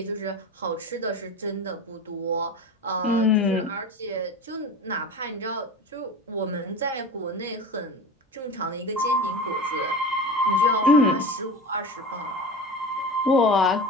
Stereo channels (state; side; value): normal; both; correlation 0.31